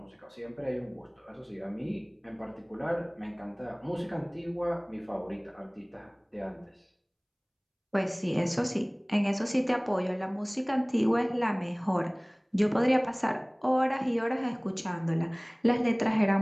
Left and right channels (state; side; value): identical; both; correlation 1.00